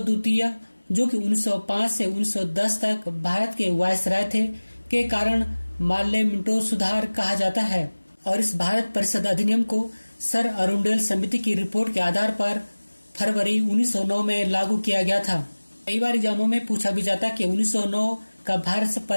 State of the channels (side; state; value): both; inverted; correlation -1.00